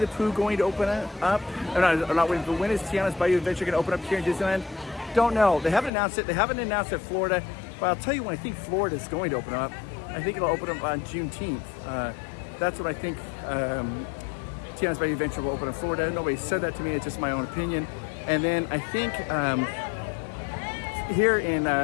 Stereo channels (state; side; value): drops out; right; at 5.9 s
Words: Pooh going to open up? Not Winnie the Pooh. When is Tiana's Bayou Adventure going to open up here in Disneyland? Don't know. They haven't announced it. They haven't announced it in Florida. But I'll tell you when I think Florida is going to open up. I think it'll open up on Juneteenth. That's what I think. Tiana's Bayou Adventure will open in Florida. Nobody said that to me. It's just my own opinion. And then I think here in